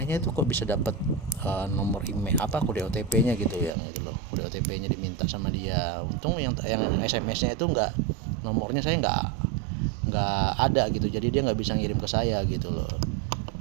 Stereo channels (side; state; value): left; drops out; at 3.7 s